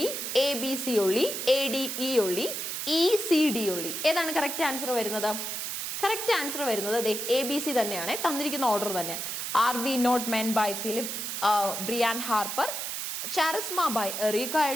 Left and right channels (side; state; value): right; noise; hiss, 4 dB below the sound